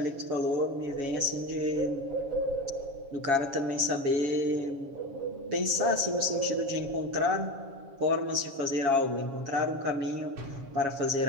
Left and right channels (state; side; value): late; left; 7.3 ms